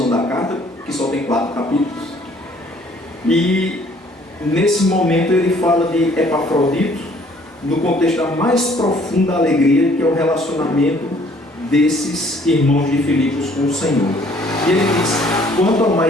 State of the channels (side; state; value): both; normal; correlation 0.59